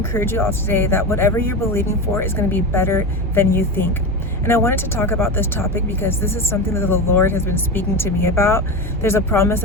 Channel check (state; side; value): normal; both; correlation 0.22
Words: you all today that whatever you're believing for is going to be better than you think. And I wanted to talk about this topic because this is something that the Lord has been speaking to me about. There's a promise